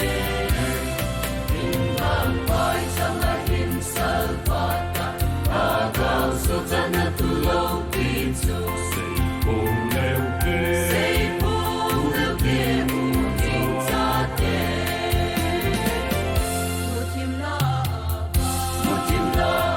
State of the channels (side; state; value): both; identical; correlation 1.00